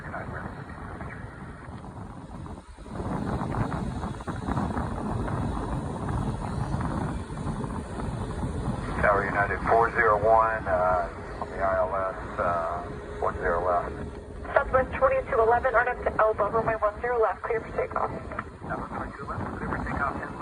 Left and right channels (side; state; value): both; identical; correlation 1.00